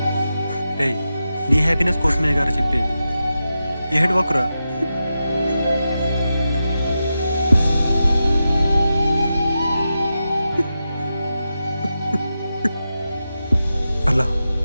రేయ్, నీ హ్యాపీనెస్ కోసమే గారు చెప్పేది. ఏడవకురా. అలా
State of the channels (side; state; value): both; inverted; correlation -0.90